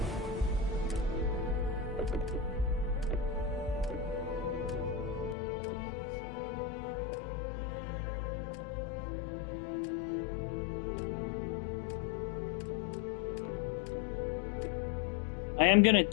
I am gonna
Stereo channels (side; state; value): right; drops out; at 5.4 s